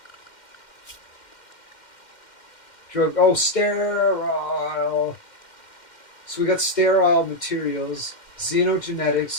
Drug. Oh, sterile. So we got sterile materials,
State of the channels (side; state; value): right; late; 2.1 ms